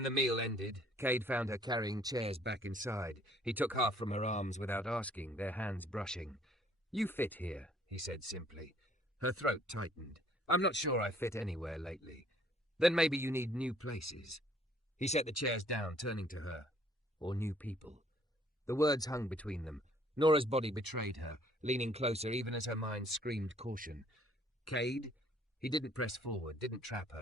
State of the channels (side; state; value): both; normal; correlation 0.61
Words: the meal ended, Kade found her carrying chairs back inside. He took half from her arms without asking, their hands brushing. "You fit here," he said simply. Her throat tightened. "I'm not sure I fit anywhere lately. Then maybe you need new places." He set the chairs down, turning to her. "Or new people." The words hung between them. Nora's body betrayed her, leaning closer even as her mind screamed caution. "Kade?" He didn't press forward, didn't trap